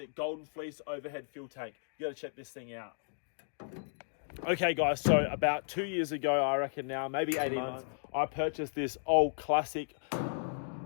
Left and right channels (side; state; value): right; silent; digital silence